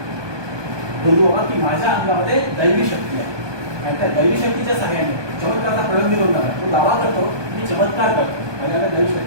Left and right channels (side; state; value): left; late; 1.2 ms